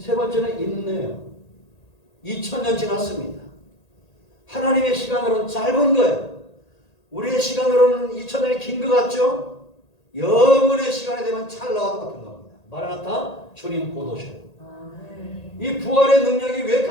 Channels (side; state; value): right; late; 1.8 ms